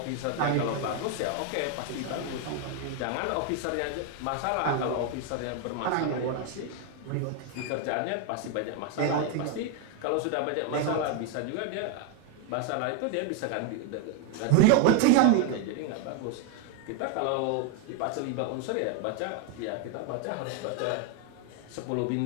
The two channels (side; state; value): both; different; correlation 0.01